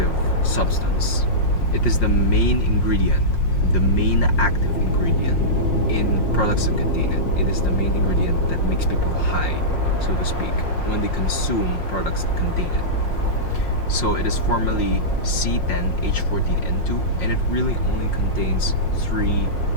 substance. It is the main ingredient, the main active ingredient in products that contain it. It is the main ingredient that makes people high, so to speak, when they consume products that contain it. So it is formally C10H14N2, and it really only contains three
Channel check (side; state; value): right; late; 5.6 ms